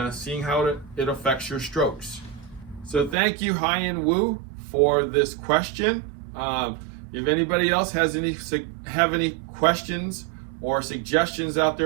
seeing how it affects your strokes. So thank you, Hyunwoo, for this question. If anybody else have any questions or suggestions out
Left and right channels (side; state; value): left; drops out; at 3.2 s